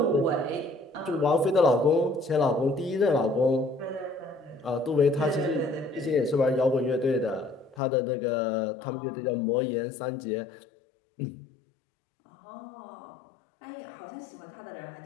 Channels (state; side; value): drops out; right; at 7.8 s